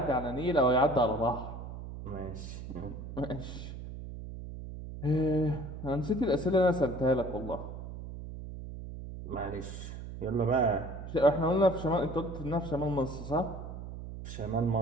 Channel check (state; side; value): noise; right; hum, 10 dB below the sound